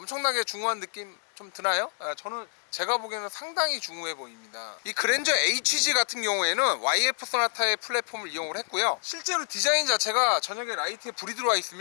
중후한 느낌 좀 드나요? 저는 제가 보기에는 상당히 중후해 보입니다. 이 그랜저 HG 같은 경우에는 YF 소나타의 플랫폼을 이용을 했고요. 실제로 디자인 자체가 저녁에 라이트에 불이 들어와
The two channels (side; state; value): right; silent; 59 dB below the other